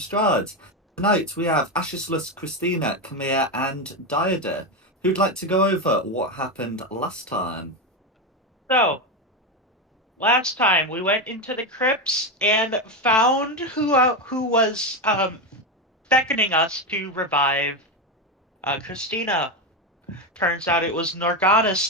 Strahd. Tonight we have Ashislus, Christina, Camille, and Diada, who'd like to go over what happened last time. So, last time we went into the crypts and found who was beckoning us to revive Christina. Turns out it was Norganis,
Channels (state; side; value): normal; both; correlation 0.13